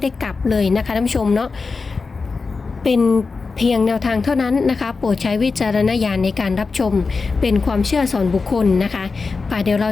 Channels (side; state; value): right; quieter; 4.4 dB